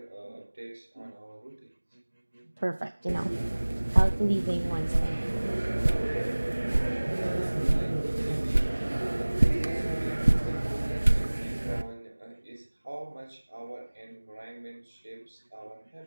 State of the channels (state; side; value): inverted; both; correlation -1.00